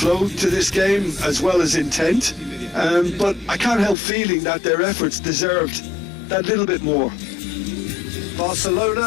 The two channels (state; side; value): drops out; right; at 4.0 s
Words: to this game as well as intent, but I can't help feeling that their efforts deserved that little bit more.